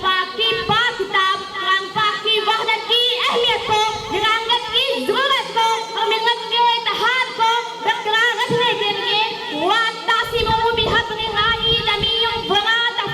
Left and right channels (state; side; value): identical; both; correlation 1.00